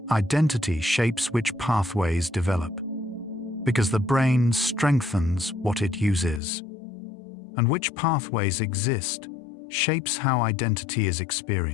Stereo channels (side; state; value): right; drops out; at 6.4 s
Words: Identity shapes which pathways develop, because the brain strengthens what it uses. And which pathways exist shapes how identity is